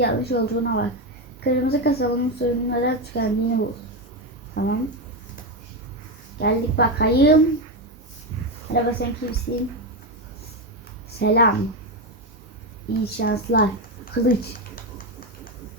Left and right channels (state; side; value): normal; both; correlation 0.11